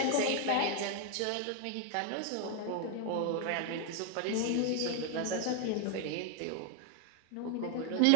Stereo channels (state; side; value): different; both; correlation 0.01